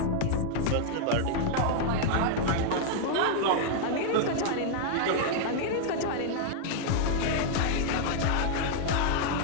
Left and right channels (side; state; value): both; different; correlation -0.01